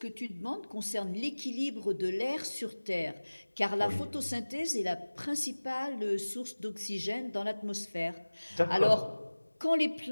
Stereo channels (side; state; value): both; inverted; correlation -1.00